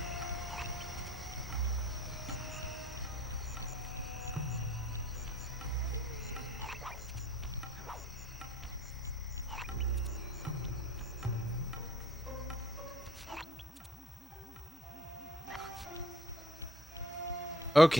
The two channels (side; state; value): both; normal; correlation 0.54